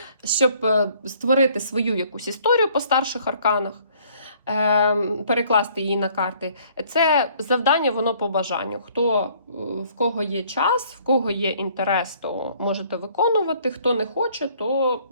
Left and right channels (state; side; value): inverted; both; correlation -0.60